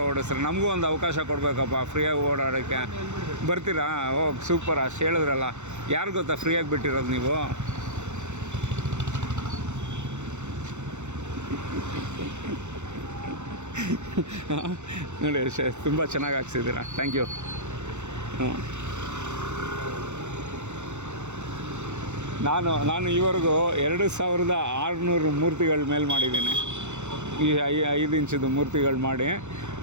ಓಡಿಸ್ತಾರೆ. ನಮಗೂ ಒಂದು ಅವಕಾಶ ಕೊಡಬೇಕಪ್ಪ ಫ್ರೀಯಾಗಿ ಓಡಾಡೋಕ್ಕೆ. ಬರ್ತೀರಾ? ಓ ಸೂಪರ್, ಅಷ್ಟು ಹೇಳಿದ್ರಲ್ಲ. ಯಾರು ಗೊತ್ತಾ ಫ್ರೀಯಾಗಿ ಬಿಟ್ಟಿರೋದು ನೀವು? ನೋಡಿ ತುಂಬ ಚೆನ್ನಾಗಿ ಹಾಕ್ಸಿದ್ದೀರಾ, ಥ್ಯಾಂಕ್ ಯು. ಹ್ಞೂ, ನಾನು ಈವರೆಗೂ 2600 ಮೂರ್ತಿಗಳ ಮೇಲೆ ಮಾಡಿದ್ದೀನಿ. ಈ 5 ಇಂಚಿದು ಮೂರ್ತಿಗಳು ಮಾಡಿ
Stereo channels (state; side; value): late; left; 0.83 ms